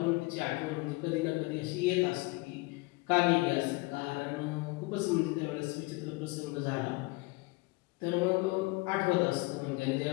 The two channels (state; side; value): quieter; right; 24.4 dB